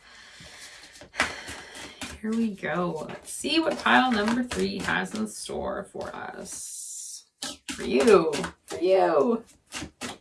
Here we go. Let's see what pile number 3 has in store for us. For you. For you.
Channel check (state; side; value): identical; both; correlation 1.00